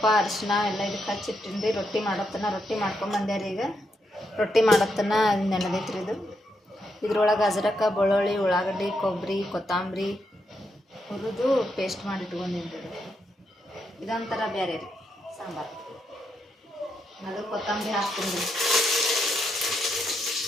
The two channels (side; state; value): both; normal; correlation 0.81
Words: ಅರಿಶಿನ ಎಲ್ಲ ಇದಕ್ಕೆ ಹಚ್ಚಿಟ್ಟಿನ್ರಿ. ರೊಟ್ಟಿ ಮಾಡತ್ತನ. ರೊಟ್ಟಿ ಮಾಡ್ಕೊಂಬಂದೆ ರೀ. ಈಗ ರೊಟ್ಟಿ ಮಾಡತ್ತನ ನೆನೆದೈತ್ರಿ ಇದು. ಇದ್ರೊಳಗೆ ಅಜ್ರಕ, ಬೆಳ್ಳುಳ್ಳಿ, ಉಳ್ಳಾಗಡ್ಡಿ, ಕೊಬ್ಬರಿ, ಕೊತ್ತಂಬರಿ ಹುರಿದು ಪೇಸ್ಟ್ ಮಾಡಿ ಇಟ್ಕೊಂಡಿನ್ರಿ. ಇದೊಂಥರ ಬೇರೆ ರೀ ಸಾಂಬಾರು. ಅದು ಕೊತ್ತಂಬರಿ ಹಾಕ್ತೀನಿ ರೀ.